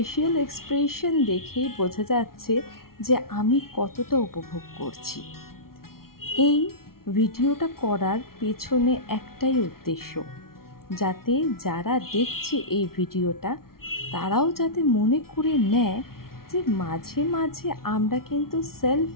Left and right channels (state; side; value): late; right; 0.93 ms